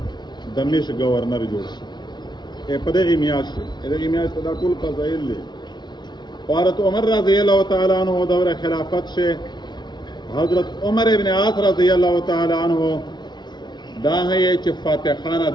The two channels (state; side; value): late; right; 0.21 ms